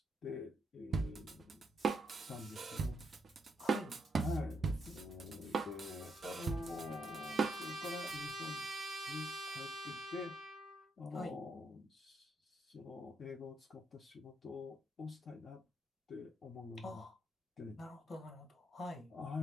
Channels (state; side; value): normal; both; correlation 0.78